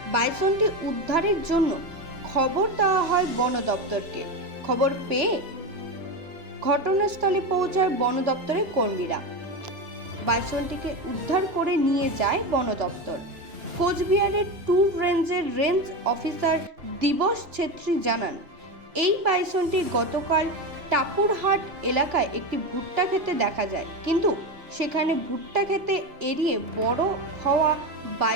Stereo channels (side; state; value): left; late; 2.9 ms